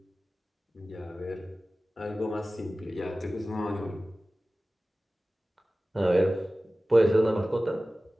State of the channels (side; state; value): both; normal; correlation 0.97